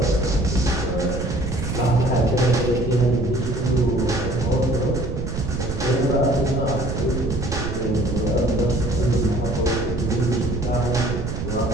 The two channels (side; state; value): right; noise; rumble, 4 dB below the sound